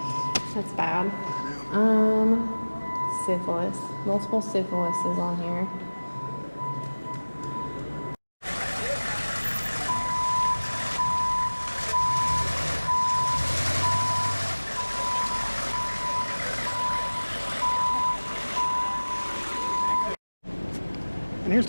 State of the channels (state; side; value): inverted; both; correlation -1.00